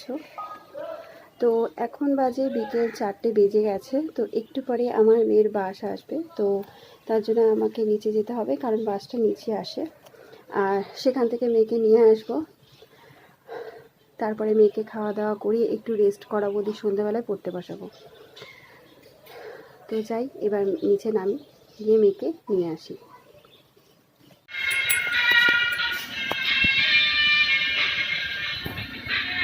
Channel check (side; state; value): both; identical; correlation 1.00